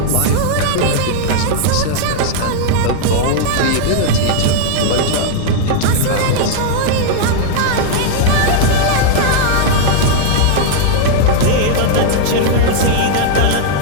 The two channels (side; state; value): both; different; correlation 0.00